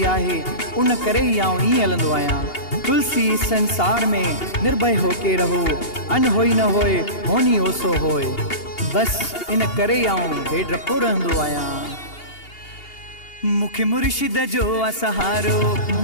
आहे, उन करे ई आउं ईअं हलंदो आहियां। तुलसी संसार में निर्भय होके रहो, अन होई न होए होनी ओसो होए। बसि इन करे आउं बेडरपो रहंदो आहियां। मुखे मुर्शिद जो आ सहारो,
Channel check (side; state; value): right; late; 2.8 ms